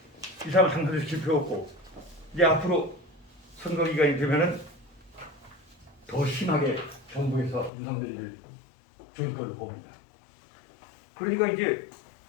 이 사람을 당선시킬 필요 없고 이제 앞으로 선거 기간이 되면은 더 심하게 정부에서 윤석열이를 조일 걸로 봅니다. 그러니까 이제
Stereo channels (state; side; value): drops out; right; at 7.7 s